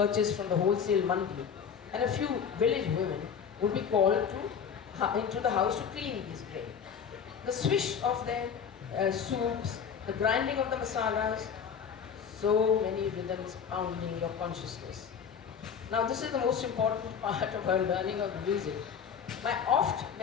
from the wholesale mandi, and a few village women would be called into the house to clean these grain. The swish of their soups, the grinding of the masalas, so many rhythms pounding your consciousness. Now this is the most important part of her learning of music. My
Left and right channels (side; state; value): right; quieter; 7.2 dB